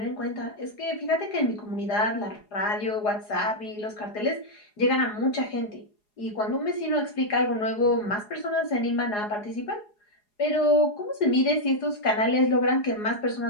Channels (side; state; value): right; late; 4.8 ms